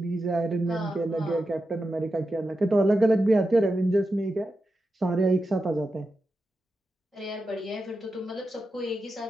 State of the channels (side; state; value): both; normal; correlation 0.90